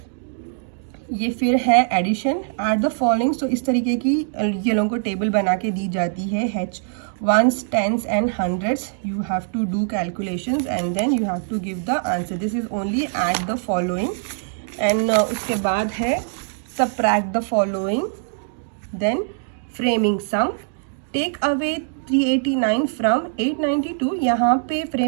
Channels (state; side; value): silent; left; digital silence